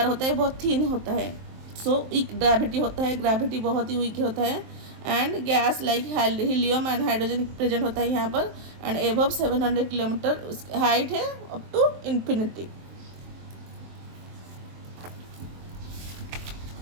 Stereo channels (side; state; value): left; late; 23 ms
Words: होता है बहुत थिन होता है। सो वीक ग्रेविटी होता है, ग्रेविटी बहुत ही वीक होता है। And gas like helium and hydrogen present होता है यहाँ पर। एंड एबव 700 किलोमीटर हाइट है अप टू इन्फिनिटी।